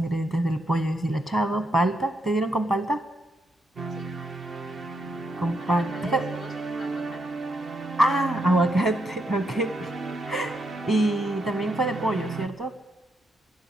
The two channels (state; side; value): normal; both; correlation 0.80